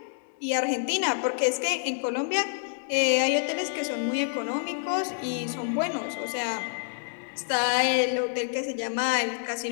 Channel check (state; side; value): silent; right; digital silence